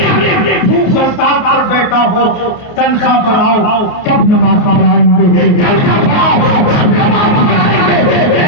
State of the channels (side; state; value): right; late; 29 ms